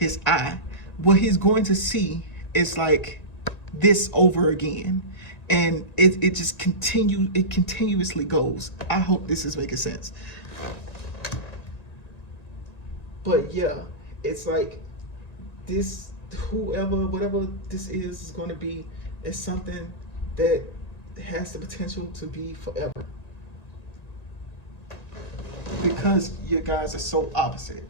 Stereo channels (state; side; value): late; right; 1.9 ms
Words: eye, what he's going to see is like this over again. And it just continuously goes. I hope this is making sense. But yeah, it's like this, whatever this is going to be, is something that has the potential to be forever. Because you guys are so opposite.